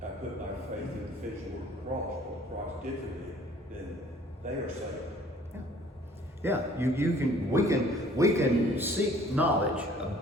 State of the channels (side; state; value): both; normal; correlation 0.54